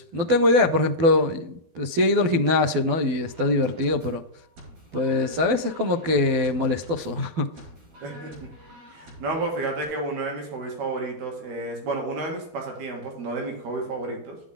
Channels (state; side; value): late; left; 12 ms